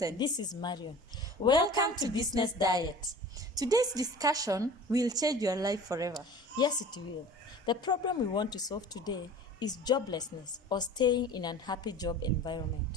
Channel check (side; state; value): both; normal; correlation 0.42